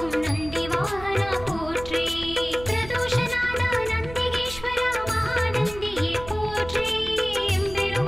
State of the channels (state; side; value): noise; right; hum, 14 dB below the sound